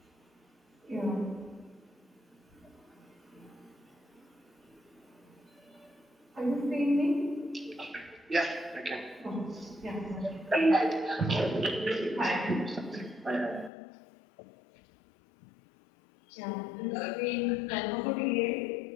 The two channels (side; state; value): right; drops out; at 13.7 s